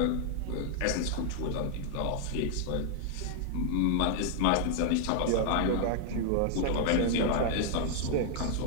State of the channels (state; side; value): different; both; correlation 0.00